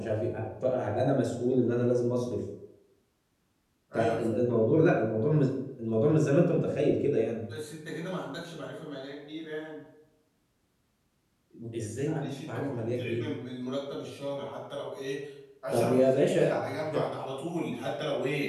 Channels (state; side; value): identical; both; correlation 1.00